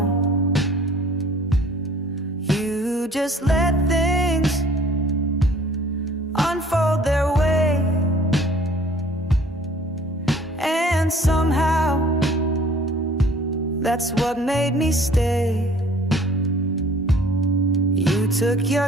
You just let things unfold their way, and somehow that's what made me stay. You took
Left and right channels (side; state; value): both; normal; correlation 0.53